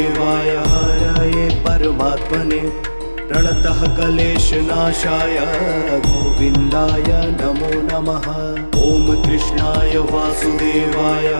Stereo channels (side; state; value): both; inverted; correlation -1.00